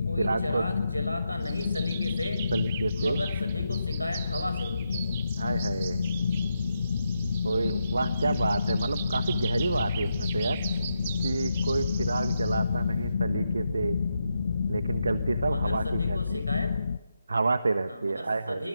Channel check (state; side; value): inverted; both; correlation -0.84